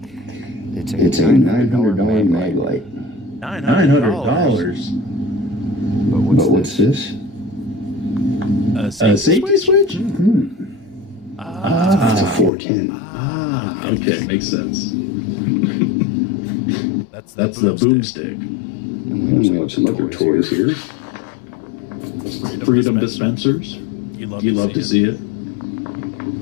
It's a $900 mag light. $900? But what's this? A safety switch? It's a 410. Okay, makes sense. That's the boomstick. And we have some other toys here. Freedom dispensers. You love to see it.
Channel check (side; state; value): right; drops out; at 12.5 s